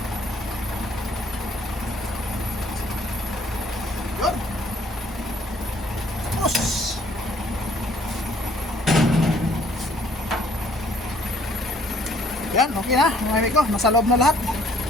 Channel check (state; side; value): normal; both; correlation 0.61